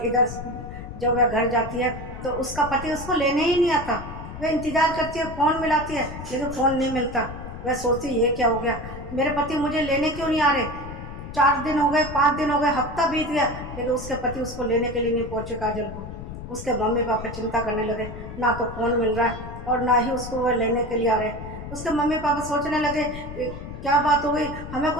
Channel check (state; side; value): noise; left; rumble, 10 dB below the sound